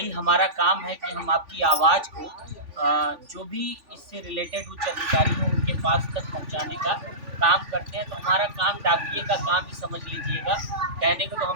हमारा काम है कि हम आपकी आवाज़ को जो भी इससे रिलेटेड उच्च अधिकारी हो उनके पास तक पहुंचाने का काम करते हैं। तो हमारा काम डाकिए का काम ही समझ लीजिएगा। कहने को तो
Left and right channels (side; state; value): left; late; 3.5 ms